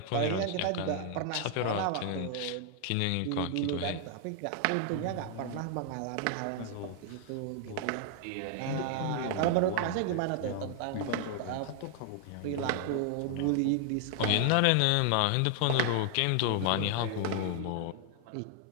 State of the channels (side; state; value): both; different; correlation 0.00